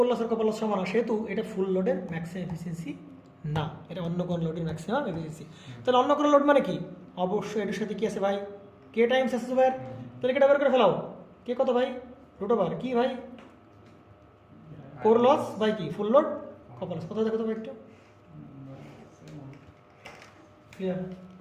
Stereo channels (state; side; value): identical; both; correlation 1.00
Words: লস আর কপার লস সমান, সেহেতু এটা ফুল লোডের ম্যাক্সিমাম এফিসিয়েন্সি না, এটা অন্য কোনো লোডের ম্যাক্সিমাম এফিসিয়েন্সি। তাহলে অন্য কোনো লোড মানে কি? অবশ্যই এটার সাথে কি আছে ভাই? কে টাইমস আছে ভাই, তাহলে কেটা বের করে ফেলাও। কে কত ভাই? √, কি ভাই? কোর লস বাই কি ফুল লোড কপার লস। কোথায় দেখো তো ভাই একটু ক্লিয়ার?